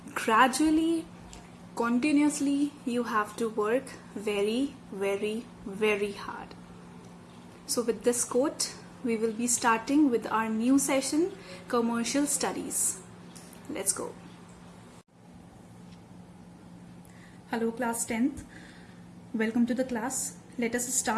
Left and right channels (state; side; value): identical; both; correlation 1.00